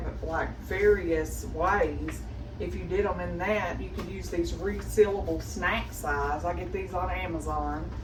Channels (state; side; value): identical; both; correlation 1.00